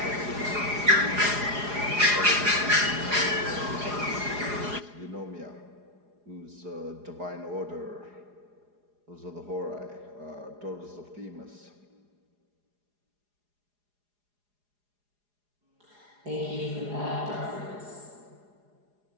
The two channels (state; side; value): late; left; 4.8 ms